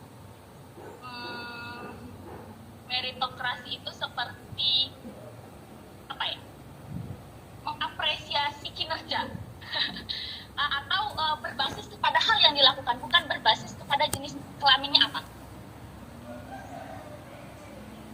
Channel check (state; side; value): identical; both; correlation 1.00